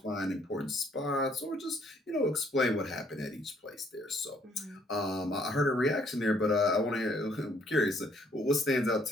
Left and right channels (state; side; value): normal; both; correlation 0.66